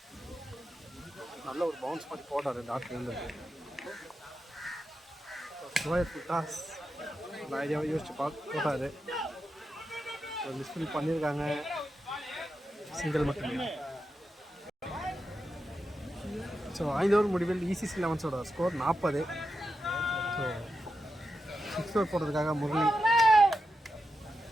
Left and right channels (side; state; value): both; normal; correlation 0.88